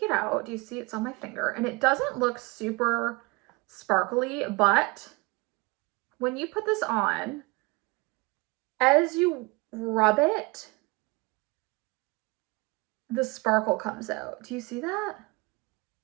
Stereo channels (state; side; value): quieter; left; 26.2 dB